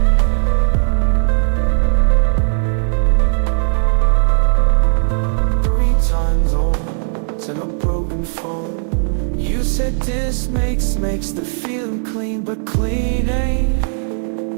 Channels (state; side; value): silent; left; digital silence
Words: 3 times over, said a broken phone. You said this makes the feeling clean, but clean ain't.